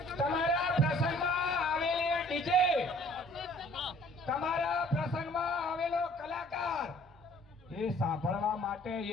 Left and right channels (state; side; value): normal; both; correlation 0.55